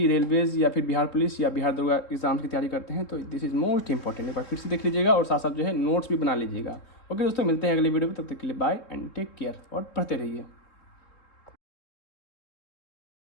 रेलवेज़ या फिर बिहार पुलिस या बिहार दरोगा एग्जाम की तैयारी करते हैं, तो दिस इज़ मोस्ट इंपॉर्टेंट। एक बार फिर से देख लीजिएगा और साथ साथ जो है नोट्स भी बना लीजिएगा। ओके दोस्तों, मिलते हैं अगले वीडियो में, तब तक के लिए बाय एंड टेक केयर और पढ़ते रहिए।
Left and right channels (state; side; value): late; right; 3.4 ms